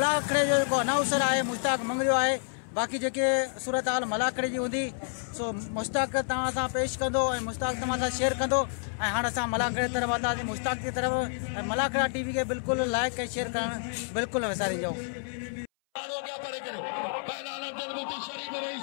जो जेको अनाउंसर आहे मुश्ताक मंगरियो आहे। बाक़ी जेके सूरत हाल मलाखड़े जी हूंदी सो मुश्ताक तव्हां सां पेश कंदो ऐं मुश्ताक तव्हां सां शेयर कंदो। ऐं हाणे असां मलाखड़े तरफ़ हलंदासीं मुश्ताक की तरफ़ ऐं मलाखड़ा टीवी के बिल्कुलु लाइक ऐं शेयर करणु बिल्कुलु न विसारिजो।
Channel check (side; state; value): right; silent; 58 dB below the other